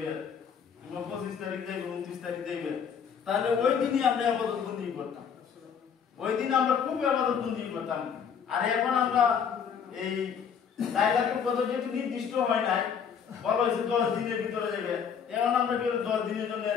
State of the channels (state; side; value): quieter; right; 7.2 dB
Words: কিংবা 25 তারিখ দেবে 29 তারিখ দেবে, তাহলে ওই দিনই আমরা ইবাদত বন্দেগী করতাম, ওই দিন আমরা খুব ইবাদত বন্দেগী করতাম। আর এখন আমরা এই লাইলাতুল কদর যেহেতু নির্দিষ্ট হয় নাই, বলা হয়েছে 10 দিনের ভিতরে যাবে, এখন আমরা কি 10 দিনের জন্য